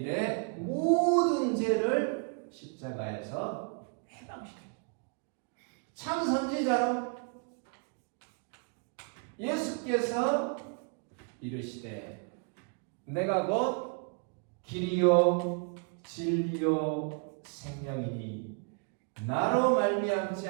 모든 죄를 십자가에서 해방시켰다. 참 선지자로 예수께서 이르시되 내가 곧 길이요 진리요 생명이니 나로 말미암지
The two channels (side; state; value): left; quieter; 39.0 dB